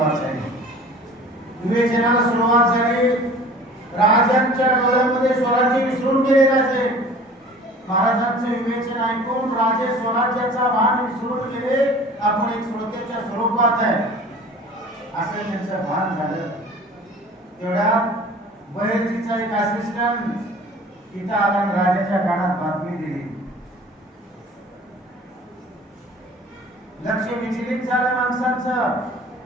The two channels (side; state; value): both; normal; correlation 0.45